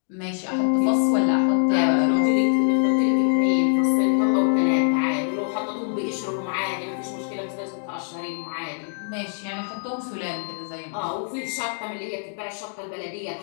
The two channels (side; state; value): right; silent; 63 dB below the other